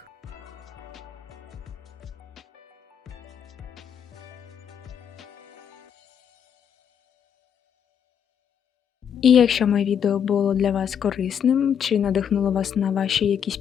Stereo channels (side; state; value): right; quieter; 8.2 dB